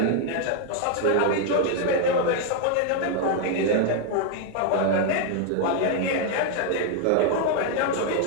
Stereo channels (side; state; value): both; different; correlation 0.00